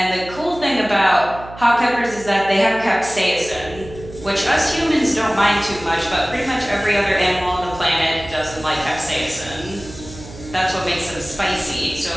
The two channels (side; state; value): right; noise; hum, 16 dB below the sound